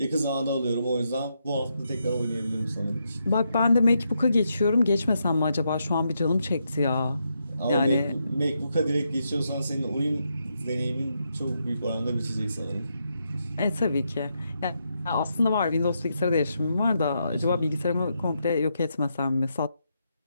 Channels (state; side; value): inverted; both; correlation -0.81